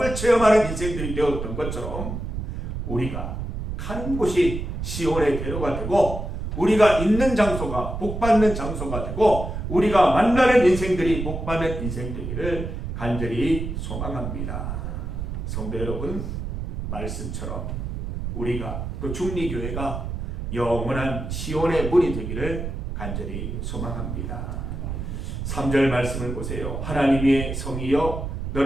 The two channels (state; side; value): noise; right; rumble, 5 dB below the sound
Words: 체험하는 인생들이 되었던 것처럼 우리가 가는 곳이 시온의 대로가 되고 우리가 있는 장소가 복받는 장소가 되고 우리가 만나는 인생들이 복받는 인생 되기를 간절히 소망합니다. 성도 여러분, 말씀처럼 우리가 또 중리교회가 영원한 시온의 문이 되기를 간절히 소망합니다. 3절 말씀을 보세요. 하나님의 성이여